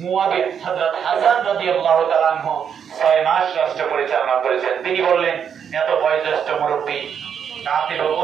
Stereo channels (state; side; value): quieter; left; 7.8 dB